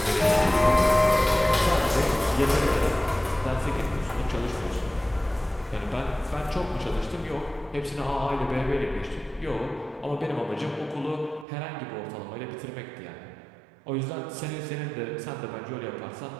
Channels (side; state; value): left; drops out; at 11.5 s